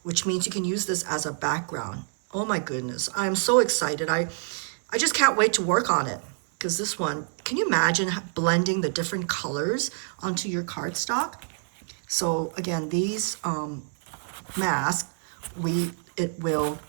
which means you can use this as a background. Oh my goodness, I am so excited. I just can't wait to work on it. Because this one, can you imagine blending the different colors onto your cardstock? So again, these masks, it will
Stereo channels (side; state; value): left; silent; 60 dB below the other